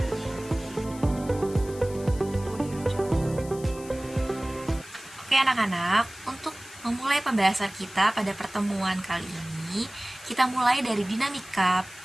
Oke anak-anak, untuk memulai pembahasan kita pada pertemuan kali ini, kita mulai dari dinamika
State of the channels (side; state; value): left; noise; hiss, 18 dB below the sound